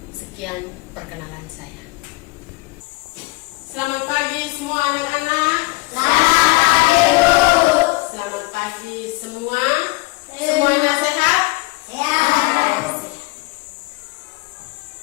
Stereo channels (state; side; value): quieter; right; 23.6 dB